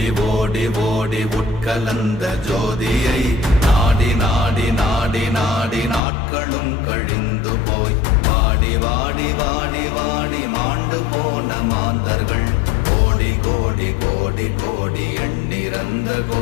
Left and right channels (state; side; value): drops out; right; at 6.0 s